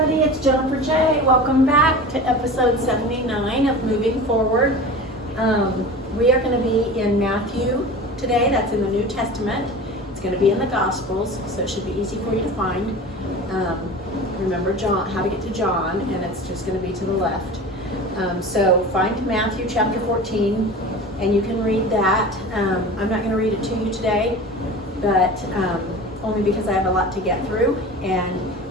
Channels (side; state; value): both; normal; correlation 0.35